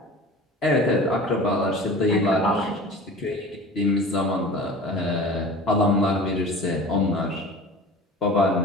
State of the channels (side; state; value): both; normal; correlation 0.39